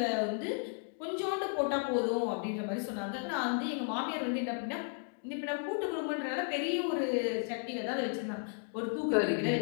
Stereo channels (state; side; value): silent; right; 55 dB below the other